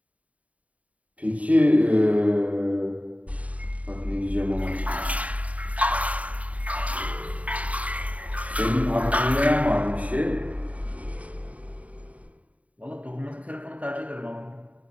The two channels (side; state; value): left; late; 0.068 ms